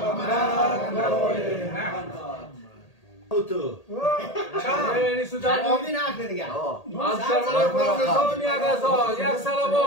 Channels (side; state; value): right; late; 1.8 ms